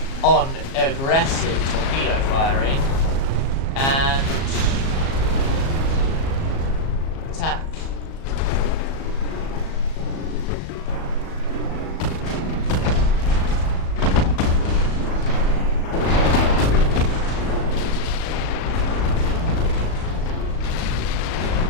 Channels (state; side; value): late; right; 37 ms